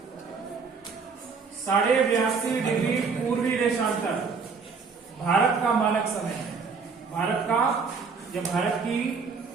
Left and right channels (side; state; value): left; quieter; 5.2 dB